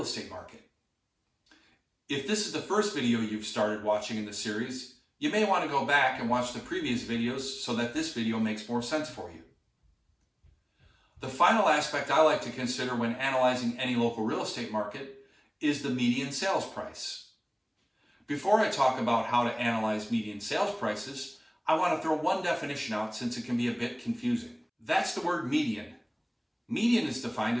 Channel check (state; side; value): identical; both; correlation 1.00